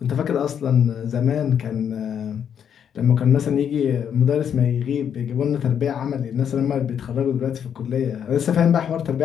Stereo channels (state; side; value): quieter; right; 8.4 dB